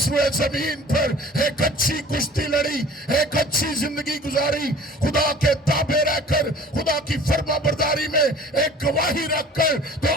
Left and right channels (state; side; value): normal; both; correlation 0.47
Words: روئے زمین پر ایک اچھی کشتی لڑی، ایک اچھی زندگی گزاری، خدا کے تابع رہ کر خدا کی فرما برداری میں ایک گواہی رکھ کر، تو